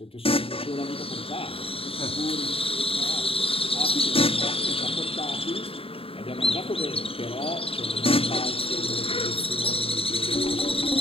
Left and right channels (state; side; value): late; right; 0.27 ms